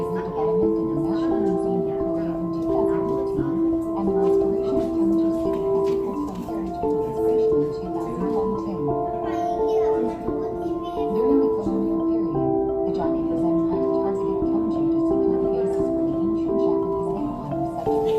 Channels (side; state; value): both; identical; correlation 1.00